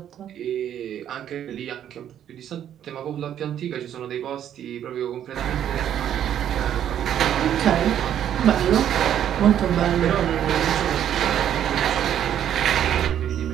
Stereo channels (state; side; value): quieter; left; 10.2 dB